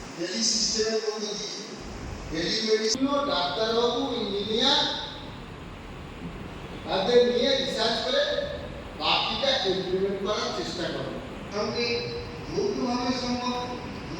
টেলি সিস্টেমের মধ্যে দিয়ে টেলিমেডিসিন ডাক্তারবাবু ইঞ্জিনিয়ার তাদের নিয়ে রিসার্চ করে বাকিটা ইমপ্লিমেন্ট করার চেষ্টা করব। সঙ্গে যৌথভাবে সম্ভব,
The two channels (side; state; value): both; identical; correlation 1.00